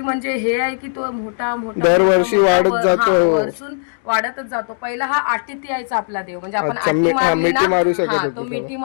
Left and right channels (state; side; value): silent; right; digital silence